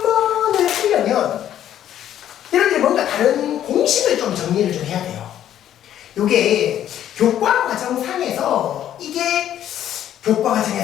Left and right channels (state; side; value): quieter; right; 11.1 dB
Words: 하려면 여러분들이 뭔가 다른 공식을 좀 정리를 좀 해야 돼요. 요게 교과 과정상에서 이게 교과